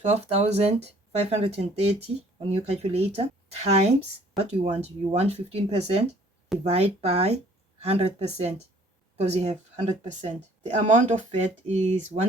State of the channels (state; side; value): normal; both; correlation 0.57